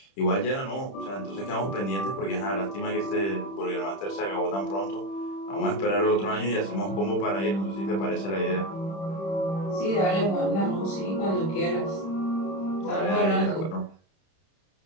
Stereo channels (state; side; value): late; right; 31 ms